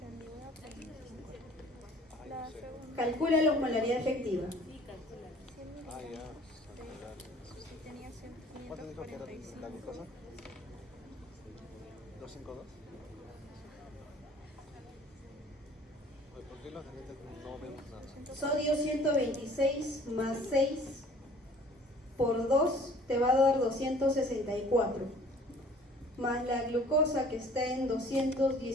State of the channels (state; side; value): normal; both; correlation 0.52